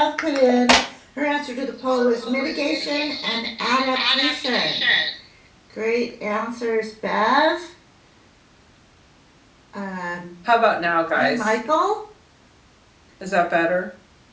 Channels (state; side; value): identical; both; correlation 1.00